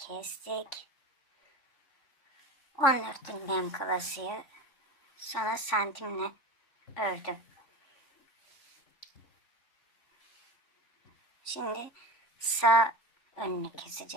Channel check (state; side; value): late; right; 3.5 ms